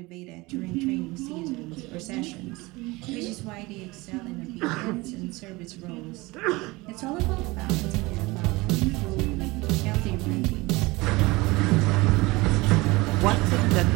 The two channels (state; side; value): quieter; left; 22.4 dB